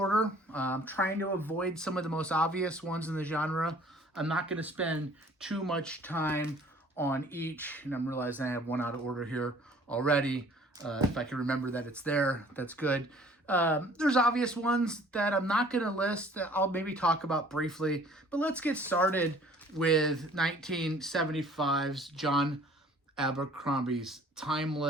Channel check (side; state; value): both; normal; correlation 0.54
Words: I'm trying to avoid some of the most obvious ones in the genre. I'm not going to spend too much time on each, and I'm realizing I have one out of order here already. If I can remember that it's there, that's good. There's obvious ones that I'm not going to list that I'll maybe talk about briefly, but let's get started with 1975's John Abercrombie's Time